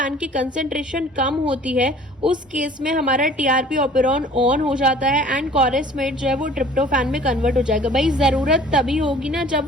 की कंसेंट्रेशन कम होती है, उस केस में हमारा टीआरपी ऑपेरॉन ऑन हो जाता है एंड कॉरेस्मेट जो है वो ट्रिप्टोफैन में कन्वर्ट हो जाएगा। भाई जरूरत तभी होगी ना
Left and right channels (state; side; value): normal; both; correlation 0.49